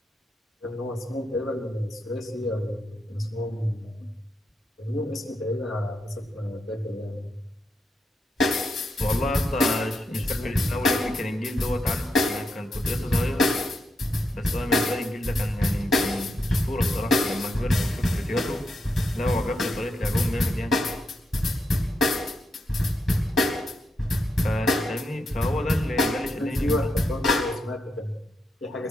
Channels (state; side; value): normal; both; correlation 0.83